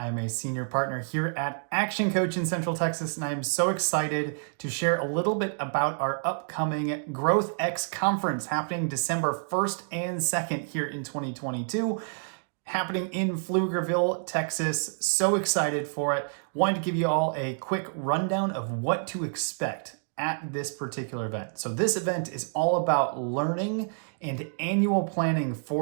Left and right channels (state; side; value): silent; left; digital silence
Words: a senior partner here at ActionCOACH in Central Texas, and I am so excited to share a little bit about our upcoming GrowthX conference happening December 1st and 2nd here in 2022, happening in Pflugerville, Texas. So excited for it. Wanted to give you all a quick rundown of what to expect at this particular event. So this event is all about learning and annual planning